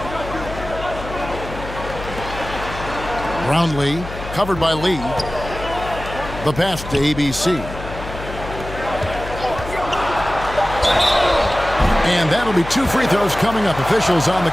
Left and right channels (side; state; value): left; noise; hum, 11 dB below the sound